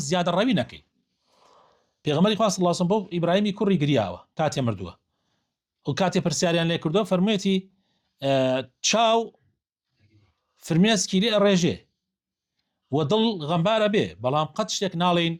ڕەوی نەکەی پێغەمبەری خوا صلی الله علیه و سلم بۆ ئیبراهیمی کوڕی گریاوە کاتێ مردووە و کاتێ پرسیاریان لێ کردووە فەرموویەتی چاو فرمێسکی لێ ڕێژێ و دڵ غەمبارە بێ بەڵام قەت شتێک ناڵێن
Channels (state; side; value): identical; both; correlation 1.00